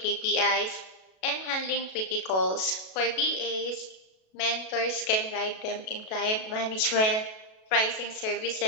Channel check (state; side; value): late; right; 37 ms